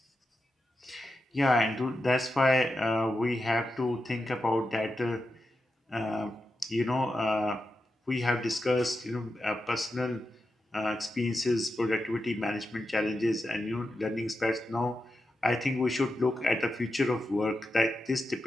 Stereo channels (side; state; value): both; normal; correlation 0.89